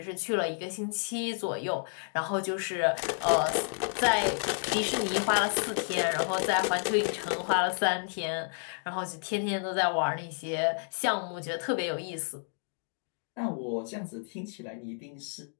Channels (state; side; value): silent; right; 57 dB below the other